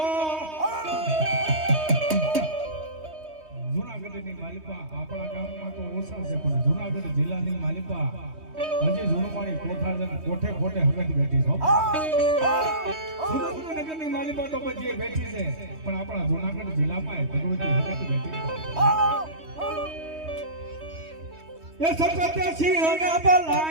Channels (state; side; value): late; left; 3.2 ms